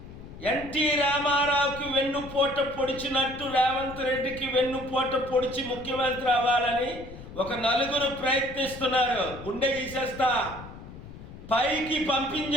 ఎన్టీ రామారావుకి వెన్నుపోట పొడిచినట్టు రేవంత్ రెడ్డికి వెన్నుపోట పొడిచి ముఖ్యమంత్రి అవ్వాలని ఒక నలుగురు ప్రయత్నిస్తున్నారు. గుండె గీసేస్తా, పైకి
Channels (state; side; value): noise; left; rumble, 14 dB below the sound